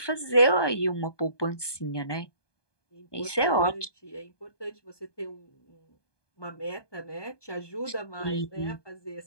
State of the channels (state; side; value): late; right; 1.2 ms